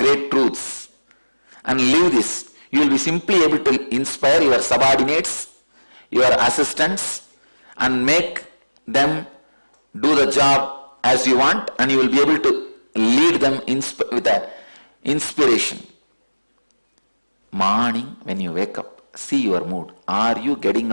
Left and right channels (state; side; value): inverted; both; correlation -1.00